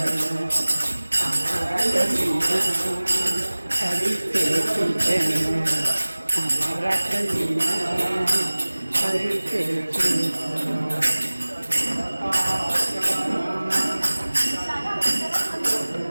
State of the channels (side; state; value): both; inverted; correlation -1.00